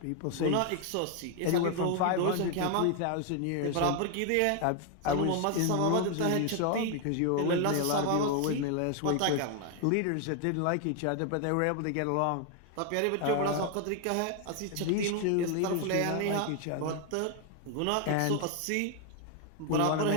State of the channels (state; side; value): different; both; correlation 0.00